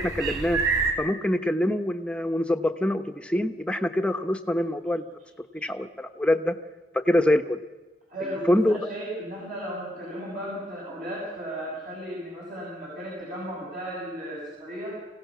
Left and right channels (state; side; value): normal; both; correlation 0.79